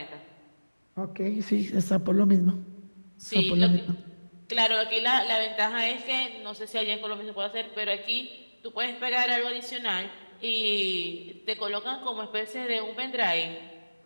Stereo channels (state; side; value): inverted; both; correlation -1.00